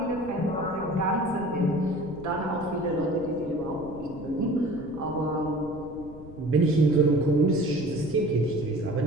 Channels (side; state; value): left; noise; rumble, 17 dB below the sound